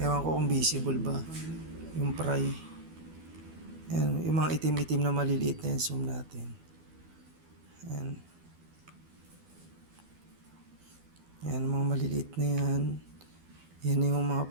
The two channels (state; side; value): late; left; 12 ms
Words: ko kung visible ba yung fry. Yan, yung mga itim-itim na maliliit na yan, zoom natin. Yan. Yan, mga maliliit na yan. Yan na yung mga